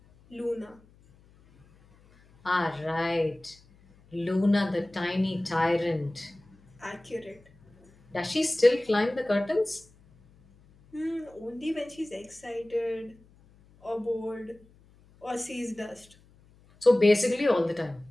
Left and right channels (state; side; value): noise; left; hum, 29 dB below the sound